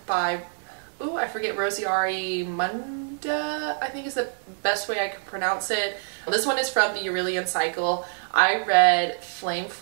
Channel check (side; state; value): left; silent; digital silence